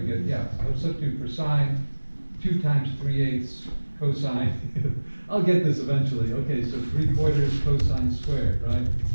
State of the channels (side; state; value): both; inverted; correlation -1.00